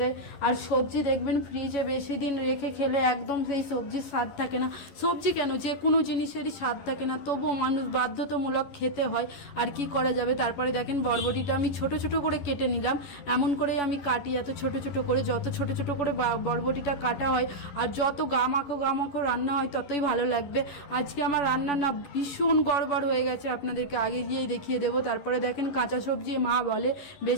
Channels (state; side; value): late; right; 11 ms